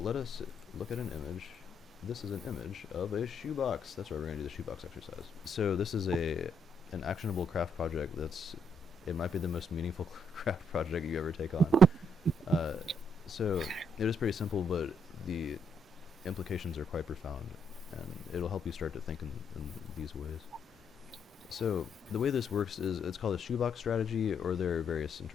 us look at an image. This is an image of a shoebox. That's right, we're going to do the shoebox exercise. So this is an actionable craft project it might be the most meaningful craft project you ever take on. Uh, so it is pretty simple, but the implications are quite profound, and it'll help you start to think in these ways. So the way this works is it's called a shoebox strategy, or there are various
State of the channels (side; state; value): both; normal; correlation 0.74